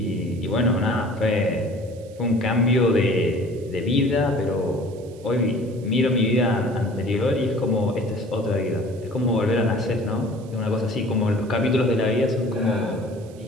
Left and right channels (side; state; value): right; noise; hiss, 27 dB below the sound